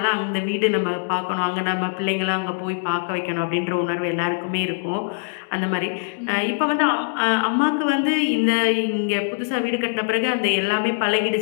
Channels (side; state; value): right; silent; digital silence